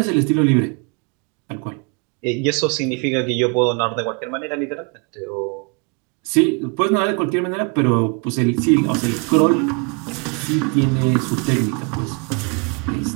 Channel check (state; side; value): quieter; left; 34.3 dB